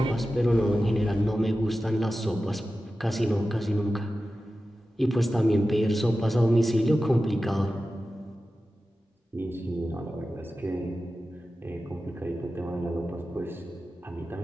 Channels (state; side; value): normal; both; correlation 0.94